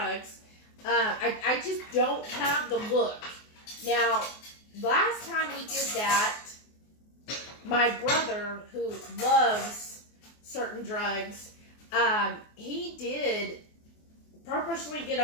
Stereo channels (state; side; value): late; right; 24 ms